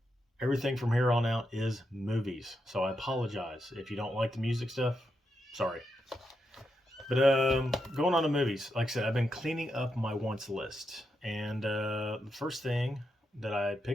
Everything from here on out is movies. So I apologize if you don't like the music stuff. Sorry. But going on to movies, like I said, I've been cleaning up my wants list. And the first thing that I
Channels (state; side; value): normal; both; correlation 0.84